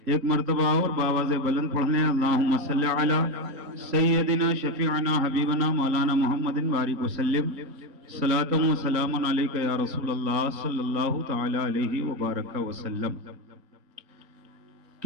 ایک مرتبہ اور باواز بلند پڑھ لیں، اللہم صلی علی سیدنا شفیعنا حبیبنا مولانا محمد بارک وسلم، صلاۃ و سلام علیک یا رسول اللہ صلی اللہ تعالی علیہ وبارک وسلم۔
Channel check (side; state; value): left; late; 3.9 ms